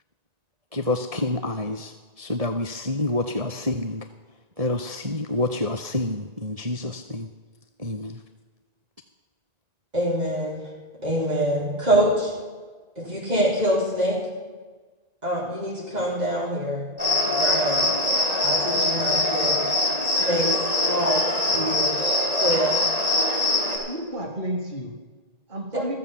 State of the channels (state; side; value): late; left; 1.9 ms